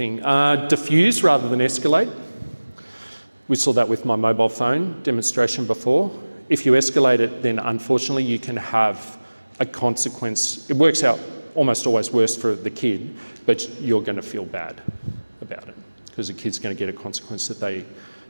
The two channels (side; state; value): both; inverted; correlation -1.00